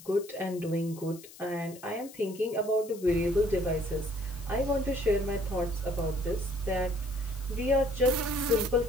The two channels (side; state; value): left; noise; hiss, 19 dB below the sound